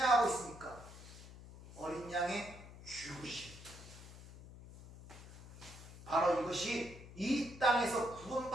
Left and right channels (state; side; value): noise; left; hum, 16 dB below the sound